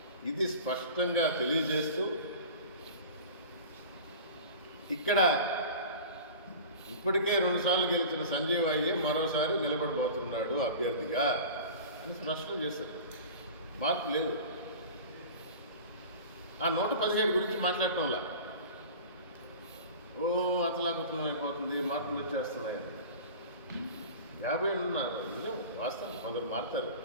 ఇది స్పష్టంగా తెలియజేస్తూ ఇక్కడ ఇప్పటికే 2 సార్లు గెలిచిన సంజీవ్ అయ్యే మరోసారి నిలబడిపోతున్నాడు అభ్యర్థిగా అని స్పష్టం చేశారు. మార్పు లేదు. ఆ 117 గురించి మాట్లాడటంలా అతలాకుతలం అయిపోతుంది, మార్పులు వచ్చేస్తున్నాయి. 50 ఉన్నారు, నిజం, వాస్తవం. కొందరు మారుతారు.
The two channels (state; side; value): inverted; both; correlation -0.37